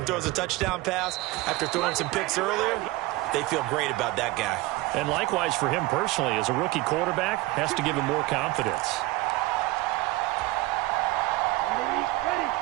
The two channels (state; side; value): quieter; left; 19.5 dB